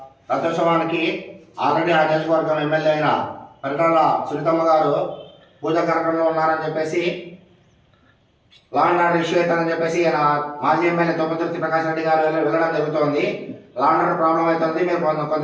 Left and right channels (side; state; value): both; identical; correlation 1.00